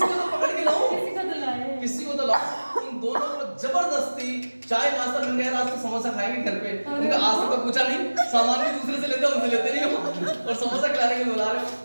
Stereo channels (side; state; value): both; inverted; correlation -1.00